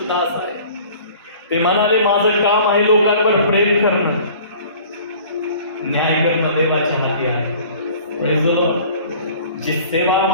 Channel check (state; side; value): inverted; both; correlation -0.48